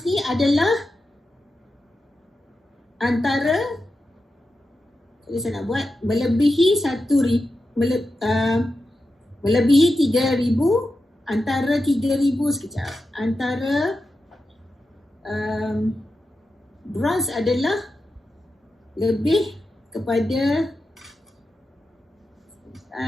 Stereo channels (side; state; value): both; normal; correlation 0.90